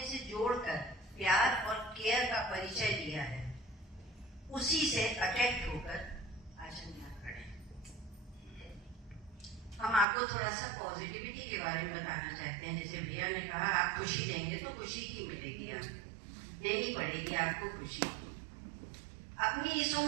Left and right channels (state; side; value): drops out; left; at 10.1 s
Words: से जोड़कर प्यार और केयर का परिचय दिया है, उसी से अट्रैक्ट होकर आज हम यहाँ खड़े हैं। हम आपको थोड़ा सा पॉजिटिविटी के बारे में बताना चाहते हैं। जैसे भैया ने कहा, आप खुशी देंगे तो खुशी की मिलेगी, आपको देनी पड़ेगी आपको खुशी। अपनी इस